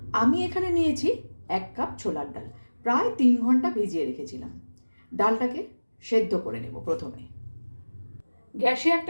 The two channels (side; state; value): both; inverted; correlation -1.00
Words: আমি এখানে নিয়েছি 1 কাপ ছোলার ডাল, প্রায় 3 ঘন্টা ভিজিয়ে রেখেছিলাম। ডালটাকে সেদ্ধ করে নেব। প্রথমে গ্যাসে